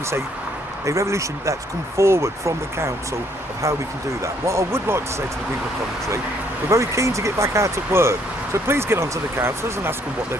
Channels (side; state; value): both; normal; correlation 0.67